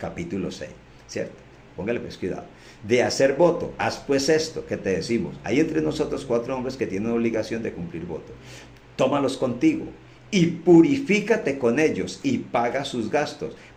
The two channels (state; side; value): identical; both; correlation 1.00